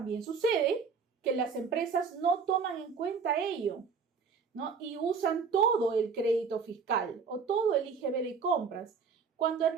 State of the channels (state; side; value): quieter; left; 5.6 dB